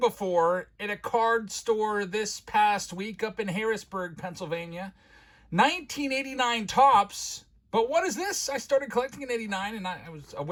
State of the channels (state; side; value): identical; both; correlation 1.00